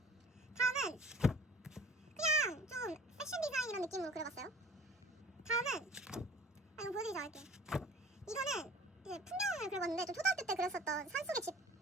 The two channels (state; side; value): normal; both; correlation 0.47